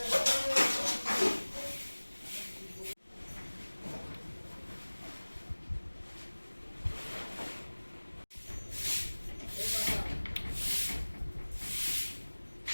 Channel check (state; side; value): inverted; both; correlation -1.00